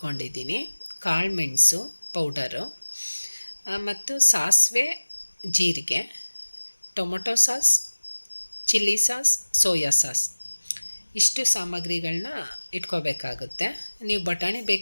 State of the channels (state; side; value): inverted; both; correlation -1.00